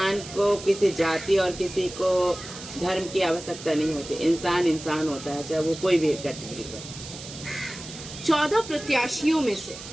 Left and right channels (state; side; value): noise; right; hiss, 13 dB below the sound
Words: को किसी जाति और किसी को धर्म की आवश्यकता नहीं होती। इंसान इंसान होता है, चाहे वो कोई भी कैटेगरी का। 14 प्रत्याशियों में से